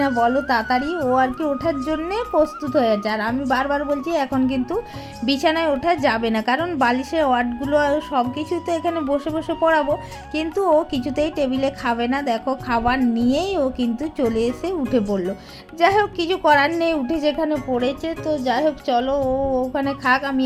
বলো তাড়াতাড়ি। ও আর কি ওঠার জন্যে প্রস্তুত হয়ে আছে, আর আমি বারবার বলছি এখন কিন্তু বিছানায় ওঠা যাবে না, কারণ বালিশের ওয়ার্ডগুলো সব কিছু তো এখানে বসে বসে পড়াবো। কিন্তু ও কিছুতেই টেবিলে খাবে না, দেখো খাবার নিয়েই ও কিন্তু চলে এসে উঠে পড়লো। যাই হোক কিছু করার নেই, উঠে যেখানে পড়েছে। তো যাই হোক চলো ও ওখানে খাক, আমি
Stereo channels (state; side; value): identical; both; correlation 1.00